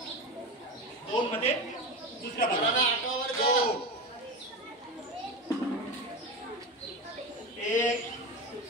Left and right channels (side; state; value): both; normal; correlation 0.22